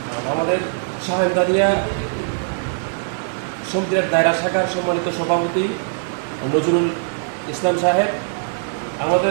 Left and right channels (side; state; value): left; silent; 55 dB below the other